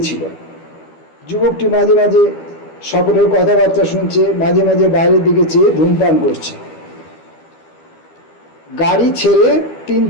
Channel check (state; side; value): late; right; 12 ms